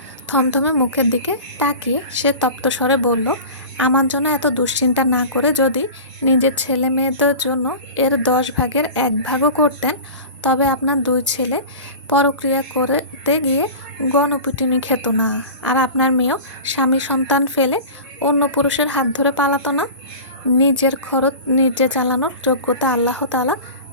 থমথমে মুখের দিকে তাকিয়ে সে তপ্ত স্বরে বলল, আমার জন্য এত দুশ্চিন্তা না করে যদি নিজের ছেলে মেয়েদের জন্য এর 10 ভাগের 1 ভাগও করতেন, তবে আপনার 2 ছেলে পরক্রিয়া করতে গিয়ে গণপিটুনি খেত না, আর আপনার মেয়েও স্বামী সন্তান ফেলে অন্য পুরুষের হাত ধরে পালাতো না। নিজের খরচ নিজে চালানোর যোগ্যতা আল্লাহ তাআলা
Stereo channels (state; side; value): inverted; both; correlation -0.34